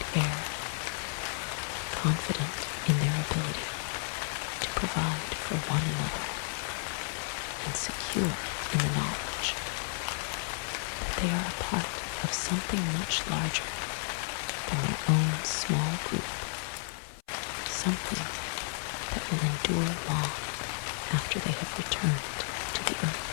air, confident in their ability to provide for one another and secure in the knowledge that they are a part of something much larger than their own small group, something that will endure long after they have returned to the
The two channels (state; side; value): silent; right; 56 dB below the other